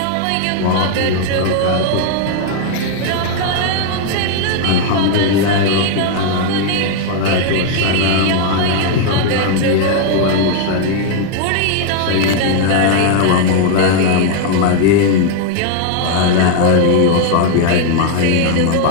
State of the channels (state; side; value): different; both; correlation 0.00